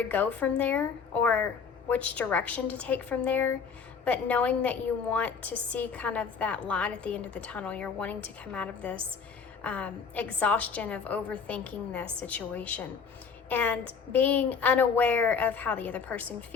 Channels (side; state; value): right; quieter; 5.9 dB